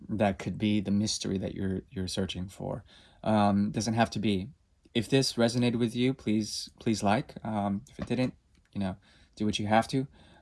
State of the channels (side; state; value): both; identical; correlation 1.00